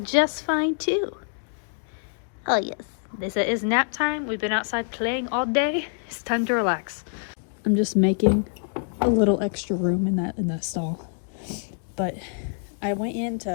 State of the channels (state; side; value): silent; right; 61 dB below the other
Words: just fine too. Oh yes, this is nap time. We've been outside playing all day. It's time to relax. I'm just making a little extra room in that stall. But I went in